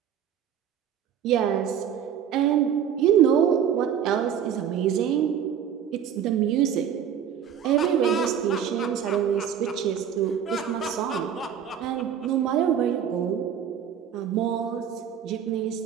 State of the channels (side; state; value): left; quieter; 8.7 dB